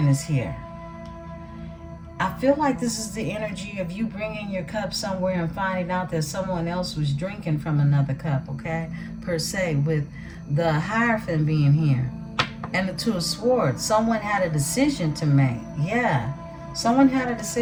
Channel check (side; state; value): both; identical; correlation 1.00